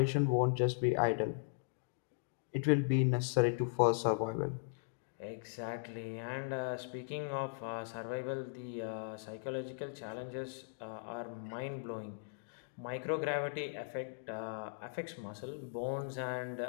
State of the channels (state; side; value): silent; right; digital silence